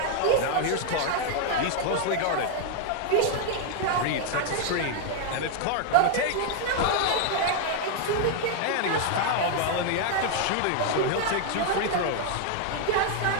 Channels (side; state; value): both; different; correlation 0.00